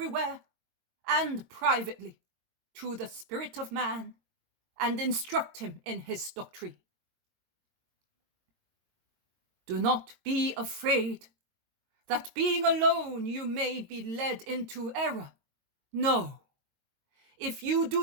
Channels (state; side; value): late; left; 22 ms